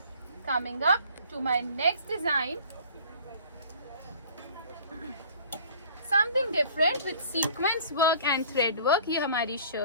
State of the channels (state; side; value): inverted; both; correlation -0.49